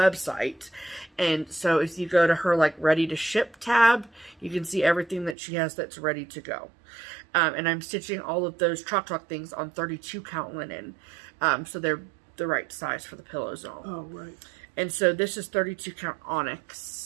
And so if you go to her like ready to ship tab, you can see everything that she has that's ready to go. And I'm stitching all of those Chalk Talk things on 32 count linen. So they're the right size for the pillows and all. Oh, right. And so this is 32 count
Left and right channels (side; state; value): left; drops out; at 5.4 s